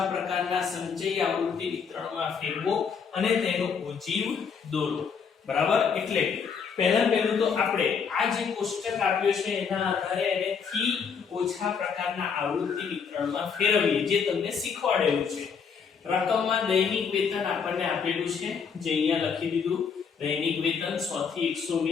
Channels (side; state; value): right; quieter; 6.2 dB